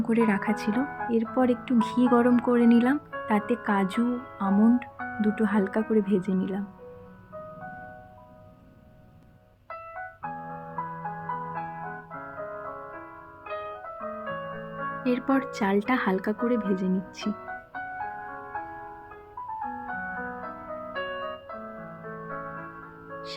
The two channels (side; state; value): both; identical; correlation 1.00